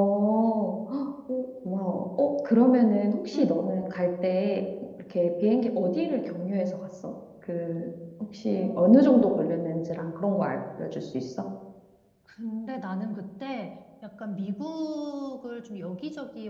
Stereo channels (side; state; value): both; identical; correlation 1.00